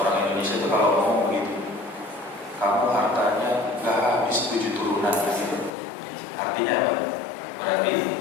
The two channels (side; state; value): right; drops out; at 5.7 s